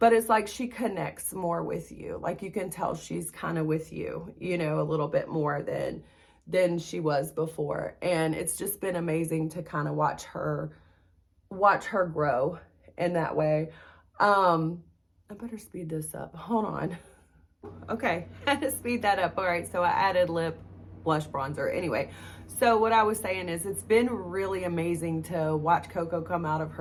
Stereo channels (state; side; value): identical; both; correlation 1.00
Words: it's like she connects more with you. Like, you can tell she's kind of with you, you know, a little bit more than she was before. And it's just been amazing to kind of watch her grow in that way. I better speed this up. Hold on. Okay, I had to speed that up. All right, so I added lip blush bronzer. Anyway, so what I was saying is, it's been really amazing to watch Coco come out of